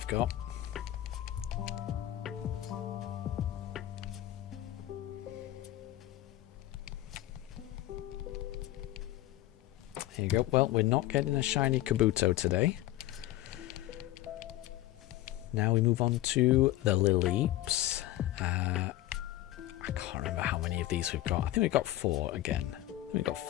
got. Here you go. Well, we're not getting a shiny Kabuto today. Now we move on to the Lileeps. I can't remember how many of these we've got. I think we've got 4 again. I think we've got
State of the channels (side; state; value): right; quieter; 15.1 dB